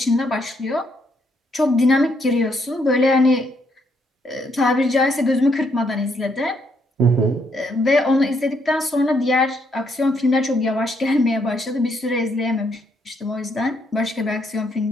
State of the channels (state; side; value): normal; both; correlation 0.73